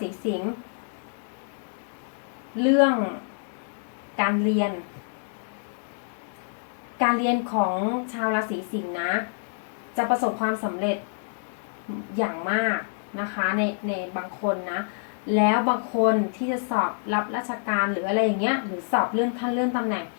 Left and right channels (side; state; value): right; silent; digital silence